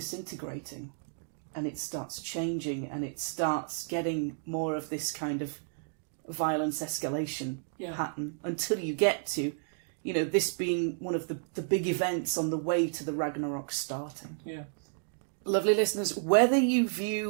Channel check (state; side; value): silent; left; digital silence